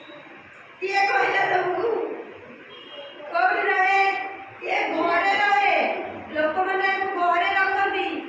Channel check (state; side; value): identical; both; correlation 1.00